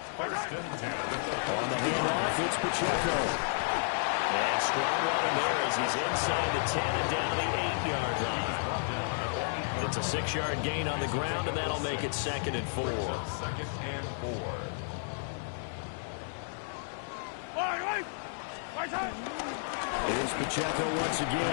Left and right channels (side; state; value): right; silent; digital silence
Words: First and 10. On the handoff, it's Pacheco. And strong running there as he's inside the 10 and down the 8-yard line. It's a 6-yard gain on the ground, and that'll make it 2nd and 4. 2nd and 4. Here's Pacheco once